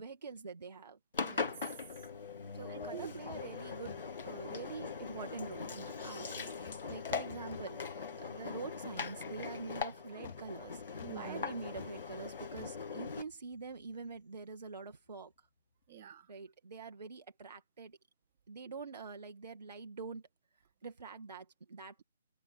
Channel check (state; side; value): inverted; both; correlation -0.46